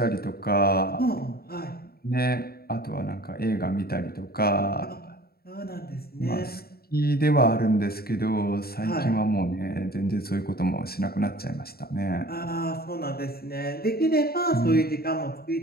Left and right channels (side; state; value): right; late; 0.45 ms